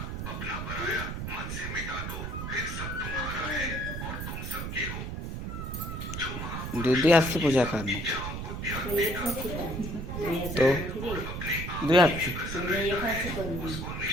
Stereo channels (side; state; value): right; noise; rumble, 5 dB below the sound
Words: दूधी हाथ से पूजा करना तो दो हाथ से